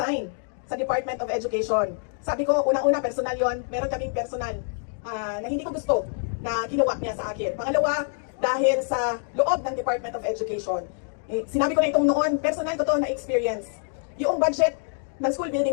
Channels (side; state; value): right; silent; 61 dB below the other